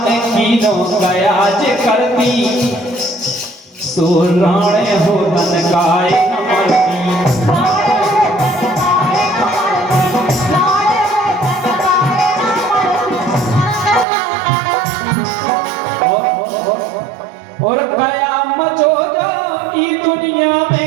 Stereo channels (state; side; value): drops out; left; at 14.1 s